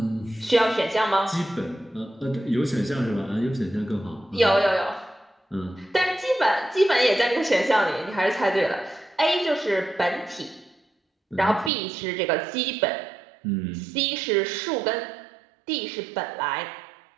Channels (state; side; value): drops out; left; at 11.7 s